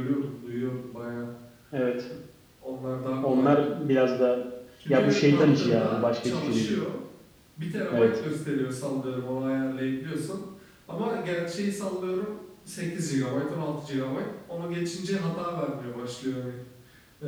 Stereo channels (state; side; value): identical; both; correlation 1.00